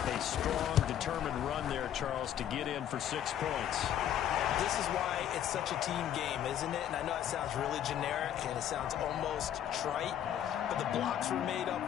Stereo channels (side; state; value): right; quieter; 10.4 dB